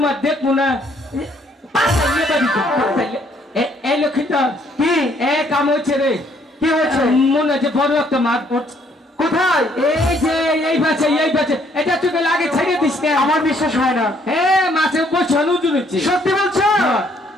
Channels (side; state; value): both; normal; correlation 0.66